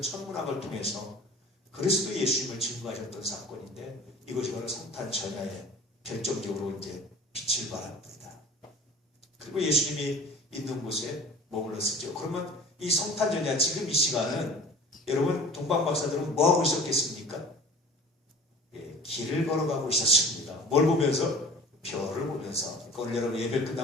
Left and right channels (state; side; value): normal; both; correlation 0.43